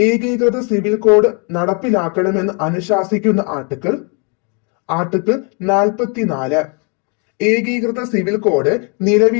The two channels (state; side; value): quieter; right; 35.8 dB